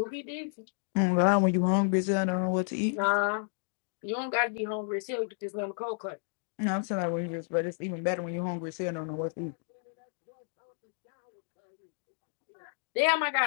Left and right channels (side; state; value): right; silent; digital silence